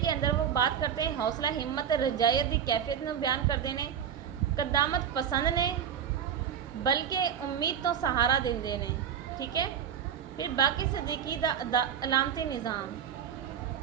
کے اندر وہ بات کرتے ہیں حوصلہ ہمت رجایت دی کیفیت میں بیان کرتے ہیں, قدامت پسند نے بلکہ امید تو سہارا دیندے نے. ٹھیک ہے, پھر باقی صدیقی دا علامتی نظام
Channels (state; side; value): quieter; left; 8.6 dB